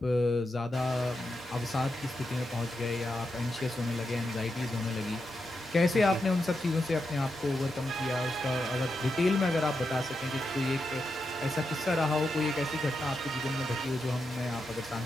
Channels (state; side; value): normal; both; correlation 0.86